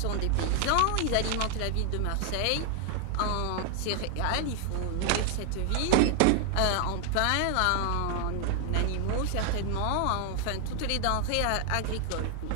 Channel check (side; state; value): both; different; correlation 0.00